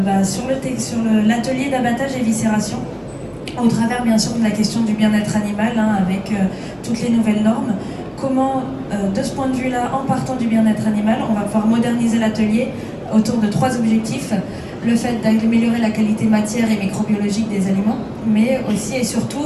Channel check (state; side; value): identical; both; correlation 1.00